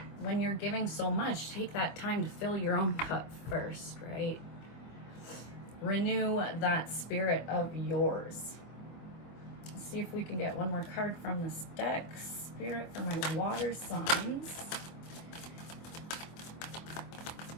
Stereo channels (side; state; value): right; late; 24 ms